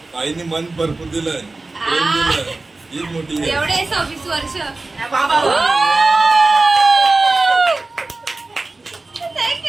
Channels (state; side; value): quieter; left; 3.3 dB